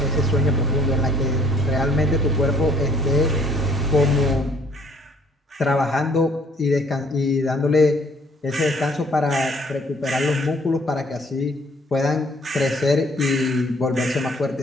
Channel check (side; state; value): both; normal; correlation 0.59